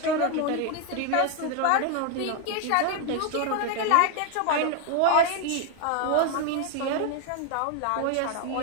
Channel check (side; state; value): both; different; correlation 0.01